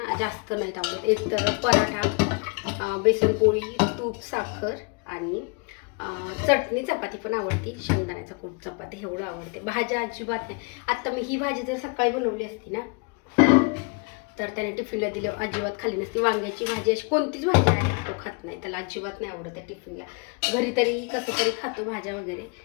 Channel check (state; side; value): quieter; right; 33.6 dB